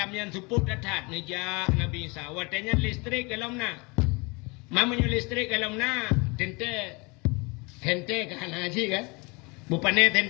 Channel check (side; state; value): right; quieter; 28.1 dB